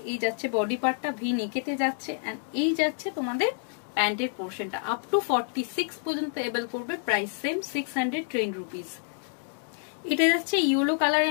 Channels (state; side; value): silent; right; 59 dB below the other